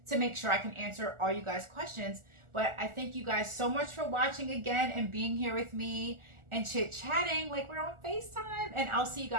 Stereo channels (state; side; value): late; left; 1.4 ms